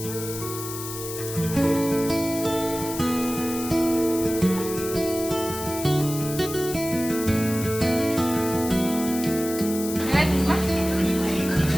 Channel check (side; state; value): left; noise; hiss, 9 dB below the sound